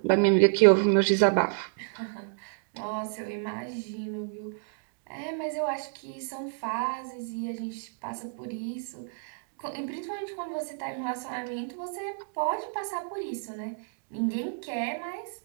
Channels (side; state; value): left; silent; digital silence